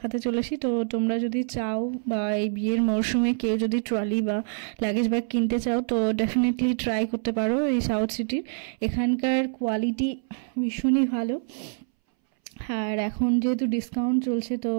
চলেছি। তো তোমরা যদি চাও বা এই বিয়ের মরশুমে কেউ যদি ট্রলি বা লাগেজ ব্যাগ কিনতে চাও, তো ডেফিনেটলি ট্রাই করতে পারো এই সাউথ সিটির। এখানকার কোয়ালিটি ভীষণই ভালো, আর এখন যেহেতু ডিসকাউন্ট চলছে, তো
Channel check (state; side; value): silent; left; 61 dB below the other